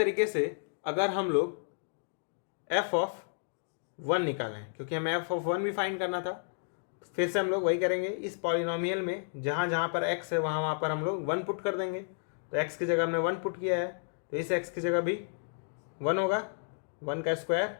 से अगर हम लोग f ऑफ 1 निकालें, क्योंकि हमें f ऑफ 1 भी फाइंड करना था, फिर से हम लोग वही करेंगे। इस पॉलिनोमियल में जहाँ जहाँ पर x है वहाँ पर हम लोग 1 पुट कर देंगे। तो x की जगह हमने 1 पुट किया है, तो इस x की जगह भी 1 होगा, 1 का square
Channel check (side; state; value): right; silent; digital silence